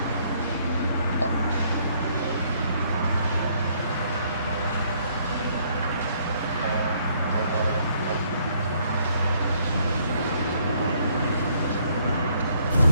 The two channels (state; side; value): inverted; both; correlation -0.67